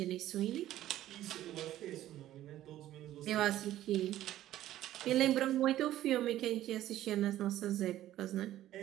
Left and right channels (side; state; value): left; quieter; 13.5 dB